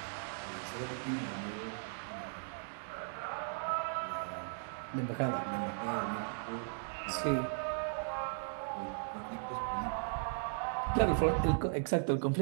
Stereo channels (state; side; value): silent; left; digital silence